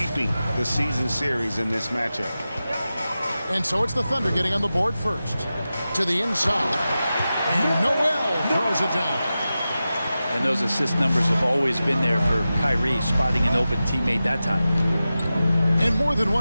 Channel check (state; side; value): inverted; both; correlation -0.94